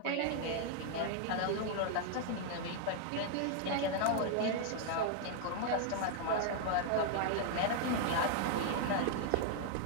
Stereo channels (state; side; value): different; both; correlation 0.00